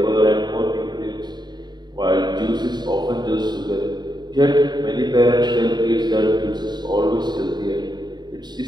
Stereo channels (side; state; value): left; late; 0.21 ms